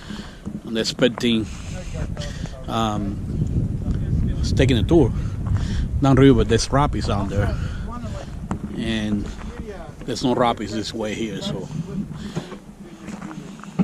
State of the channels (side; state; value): both; identical; correlation 1.00